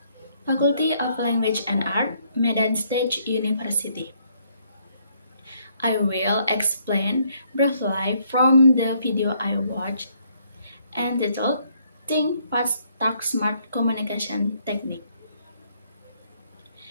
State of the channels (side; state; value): both; inverted; correlation -0.69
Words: Faculty of Language and Art, Medan State University. I will explain briefly from the video I watched entitled Think Fast, Talk Smart Communication Technique.